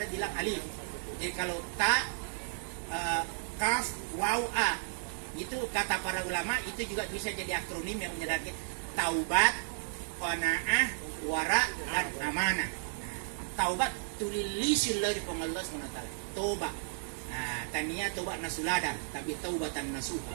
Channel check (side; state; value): left; silent; 55 dB below the other